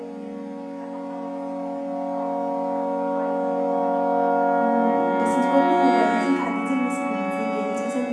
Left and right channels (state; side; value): identical; both; correlation 1.00